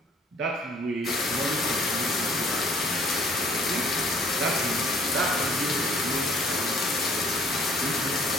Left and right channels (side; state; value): both; normal; correlation 0.58